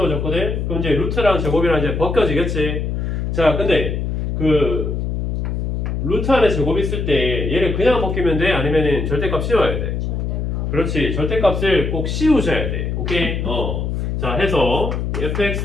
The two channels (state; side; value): noise; left; hum, 1 dB below the sound